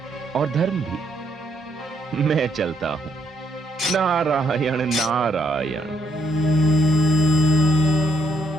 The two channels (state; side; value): normal; both; correlation 0.73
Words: और धर्म भी। मैं चलता हूं। नारायण नारायण।